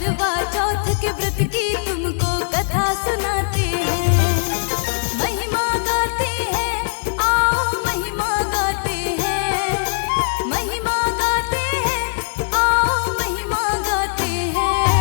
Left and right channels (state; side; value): silent; right; digital silence